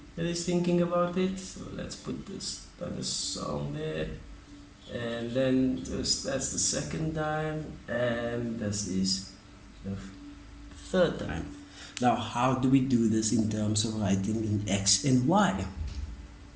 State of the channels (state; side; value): identical; both; correlation 1.00